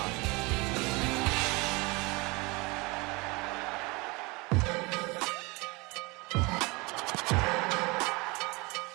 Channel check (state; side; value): quieter; left; 25.7 dB